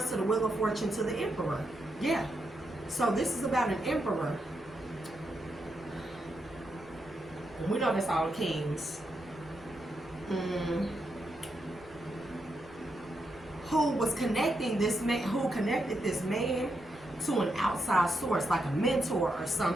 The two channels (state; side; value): noise; right; rumble, 25 dB below the sound